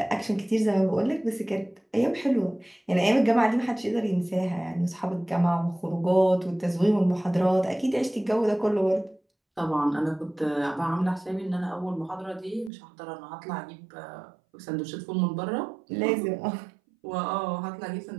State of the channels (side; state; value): left; drops out; at 12.7 s